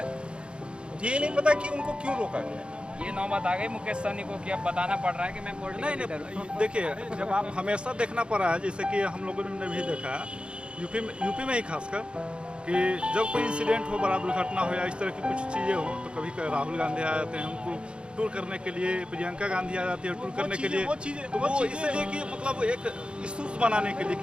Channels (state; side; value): late; left; 0.055 ms